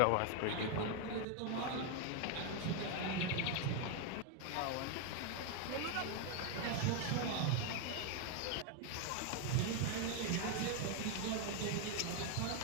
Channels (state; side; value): different; both; correlation 0.01